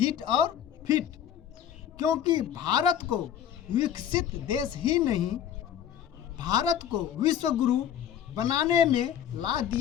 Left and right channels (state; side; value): quieter; right; 9.7 dB